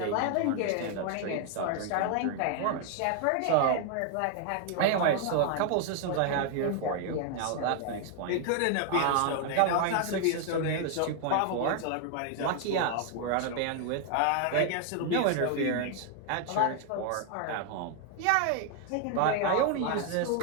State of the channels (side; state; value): both; different; correlation 0.00